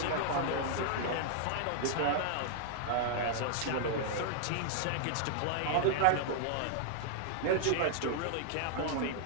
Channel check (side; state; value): both; different; correlation -0.01